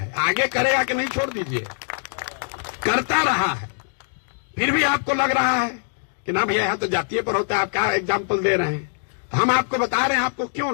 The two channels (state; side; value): silent; right; digital silence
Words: आगे करेगा कि नहीं छोड़ दीजिए, करता रहा है। फिर भी आपको लग रहा है कि ना भैया यहां तो जातीय पर होता है, आप क्या एग्जाम्पल दे रहे हैं? हम आपको बता रहे हैं आपको